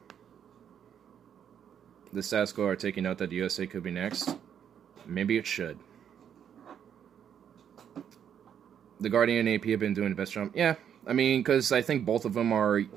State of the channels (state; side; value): quieter; left; 8.7 dB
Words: The status quo are taking note that the USA could be next. Maybe it should. The Guardian and AP have been doing the best job. Yeah, I mean, because I think both of them are